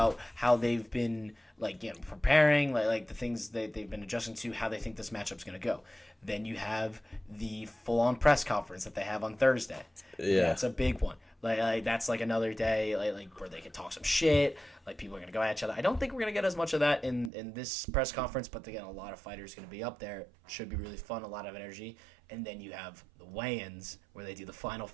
how they've been preparing, like the things they've been adjusting to, how they think this matchup's going to go. Then you have the full-on press conference that they have on Thursday. Yeah. That's a big one. Like that's like another day like where they can talk some shit. Like people are going to go at each other. I don't think we're going to get as much of that in this press conference, but again, a lot of fighters going to be up there. Should be really fun, a lot of energy. And then you have the weigh-ins where they do the final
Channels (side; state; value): left; drops out; at 17.3 s